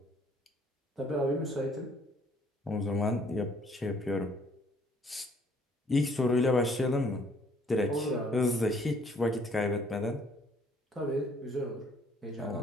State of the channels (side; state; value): both; normal; correlation 0.61